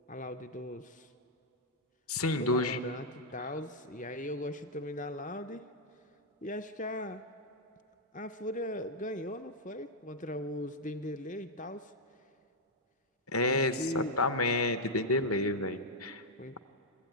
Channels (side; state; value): both; normal; correlation -0.02